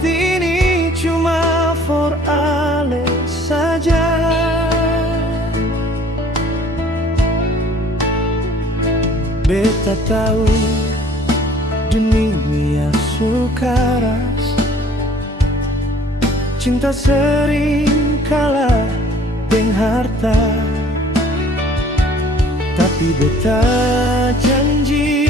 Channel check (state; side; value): normal; both; correlation 0.54